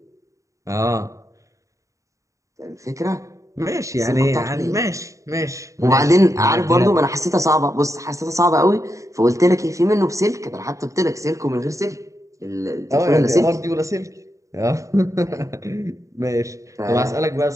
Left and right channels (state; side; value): late; left; 0.16 ms